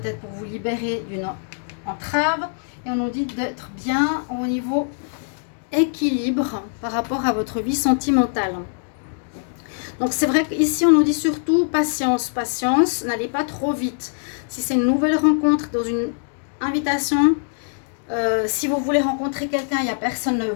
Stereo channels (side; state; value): right; silent; digital silence